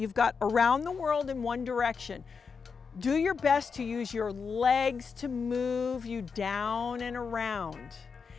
got around the world in one direction. Do your best to use your legs to move you down and around.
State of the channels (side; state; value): right; quieter; 5.5 dB